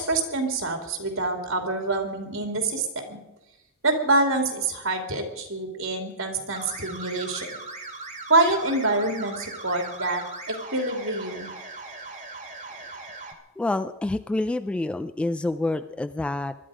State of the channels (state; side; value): normal; both; correlation -0.11